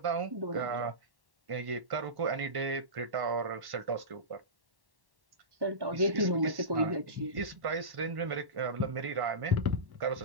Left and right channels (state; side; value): late; left; 1.1 ms